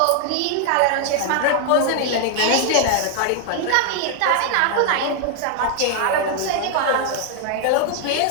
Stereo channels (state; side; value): different; both; correlation 0.00